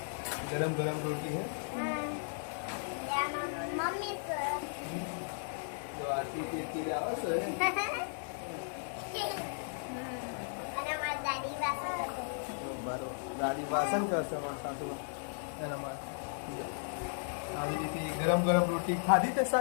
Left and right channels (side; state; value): right; silent; digital silence